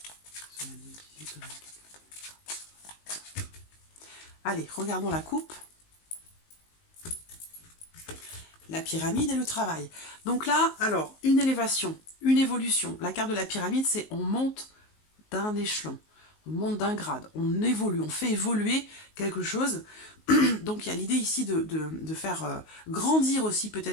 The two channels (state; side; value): late; right; 19 ms